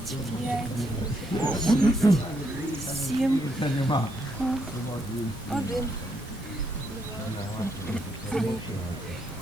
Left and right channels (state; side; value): normal; both; correlation 0.76